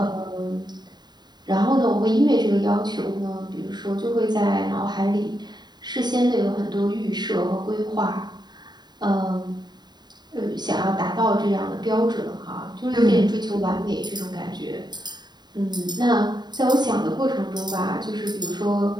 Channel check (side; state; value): left; late; 0.20 ms